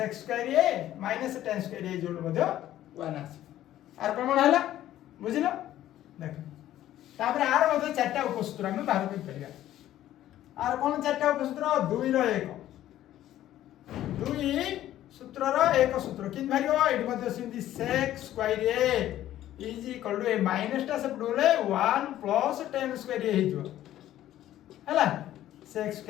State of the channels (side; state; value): right; quieter; 13.0 dB